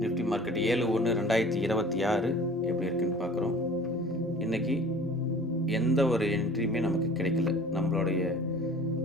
நிஃப்டி மார்க்கெட் 7/1/2026 எப்படி இருக்குன்னு பார்க்குறோம். இன்றைக்கி எந்த ஒரு என்ட்ரியுமே நமக்கு கிடைக்கல. நம்மளுடைய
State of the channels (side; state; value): both; normal; correlation 0.46